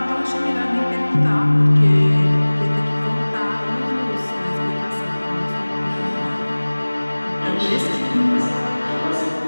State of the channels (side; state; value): both; inverted; correlation -1.00